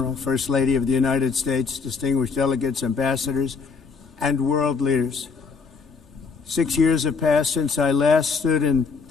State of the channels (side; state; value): right; quieter; 5.1 dB